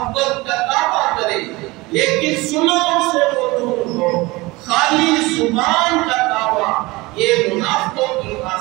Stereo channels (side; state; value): left; quieter; 22.3 dB